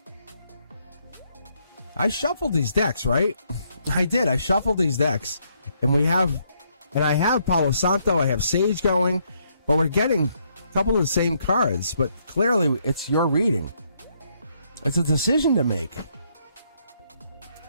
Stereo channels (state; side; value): inverted; both; correlation -0.73